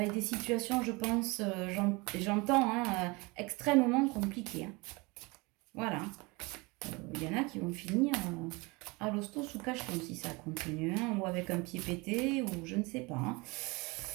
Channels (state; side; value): quieter; left; 25.9 dB